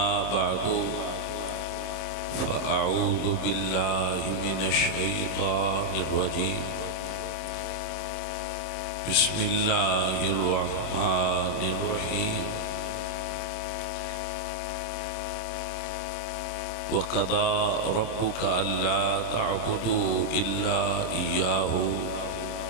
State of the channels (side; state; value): right; late; 26 ms